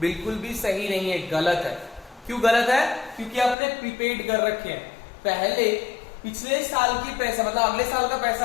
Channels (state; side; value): drops out; right; at 3.6 s